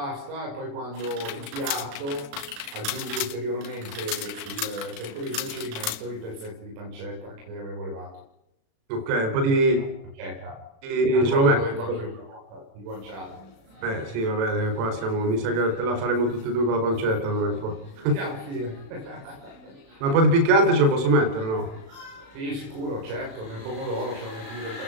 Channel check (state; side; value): late; left; 36 ms